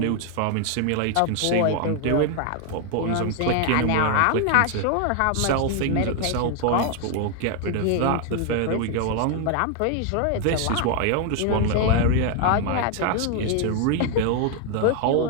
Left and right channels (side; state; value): both; different; correlation 0.00